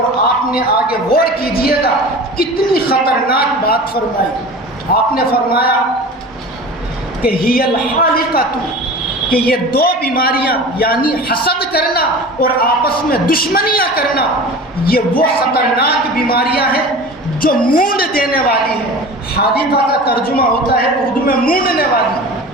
آپ نے آگے غور کیجئے گا کتنی خطرناک بات فرمائی. آپ نے فرمایا کہ ہی الحالقۃ کہ یہ دو بیماریاں یعنی حسد کرنا اور آپس میں دشمنیاں کرنا یہ وہ خطرناک بیماریاں ہیں جو مونڈ دینے والی ہیں. حادثہ کا ترجمہ ہوتا ہے اردو میں مونڈنے والی.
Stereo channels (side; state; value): both; normal; correlation 0.36